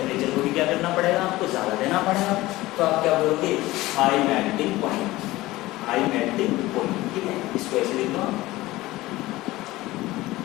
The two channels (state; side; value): quieter; right; 18.3 dB